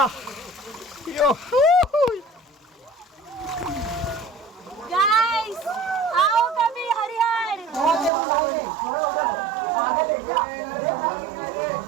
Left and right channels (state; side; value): drops out; left; at 8.1 s